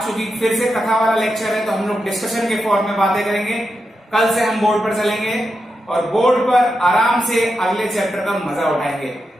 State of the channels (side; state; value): both; normal; correlation 0.87